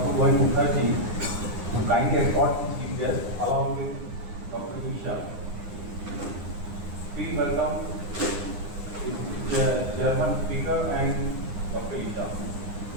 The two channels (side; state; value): left; late; 9.8 ms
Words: Govind Mukherjee, to kindly escort the chief guest along with Dr. Isha. Please welcome the chairman speaker and Dr. Isha.